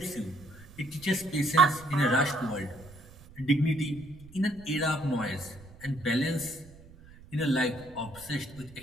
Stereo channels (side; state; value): right; noise; rumble, 21 dB below the sound